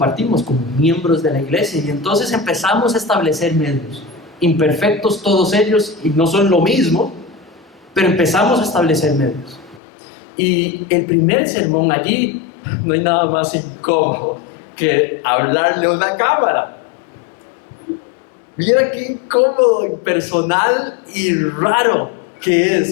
como miembros de la iglesia? Y entonces empezamos a establecer medios, imperfectos todos ellos, y no son lo mismo, pero empezamos a establecer medios. Y el primer sermón allí, no hay nada más incómodo que hablarle a una cámara. Mira qué incómodo, impersonal y raro que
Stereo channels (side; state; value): right; drops out; at 9.8 s